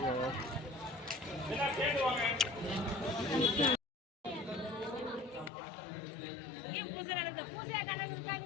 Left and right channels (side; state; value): right; drops out; at 5.5 s